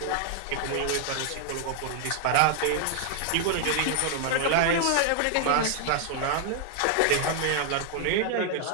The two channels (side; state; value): both; different; correlation 0.00